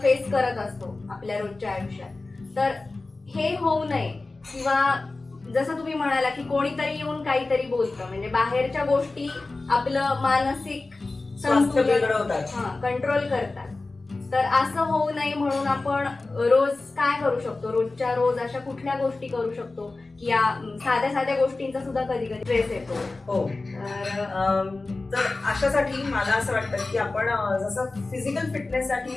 फेस करत असतो आपल्या रोजच्या आयुष्यात. तर हे होऊ नये किंवा जसं तुम्ही म्हणाला की कोणीतरी येऊन काहीतरी बोलतं म्हणजे बाहेरच्या गोष्टी आपलं मानसिक कंट्रोल करतात. तर असं होऊ नये म्हणून आपण रोज काय करू शकतो, रोजच्या रोज अशा कुठल्या गोष्टी करू शकतो की या साध्या साध्या गोष्टींचा सुद्धा कधी कधी स्ट्रेस येतो. हो, तर अशासाठी मला असं वाटतं की आपण जसं फिजिकल फिटनेससाठी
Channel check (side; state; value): right; quieter; 3.3 dB